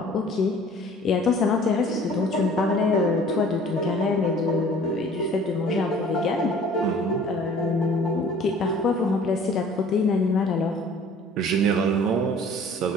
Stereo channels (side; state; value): both; normal; correlation 0.50